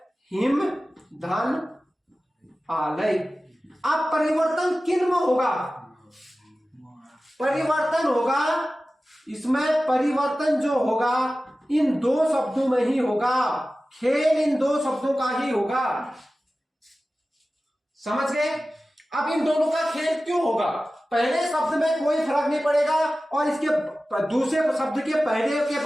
हिम धन आलय। अब परिवर्तन किन में होगा? परिवर्तन होगा इसमें, परिवर्तन जो होगा इन दो शब्दों में ही होगा। खेल इन दो शब्दों का ही होगा। समझ गए? अब इन दोनों का खेल क्यों होगा? पहले शब्द में कोई फर्क नहीं पड़ेगा और इसके दूसरे शब्द के पहले के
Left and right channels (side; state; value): both; normal; correlation 0.95